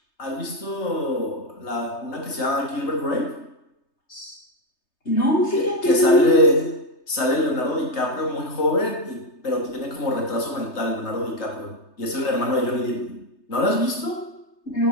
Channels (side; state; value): right; late; 3.3 ms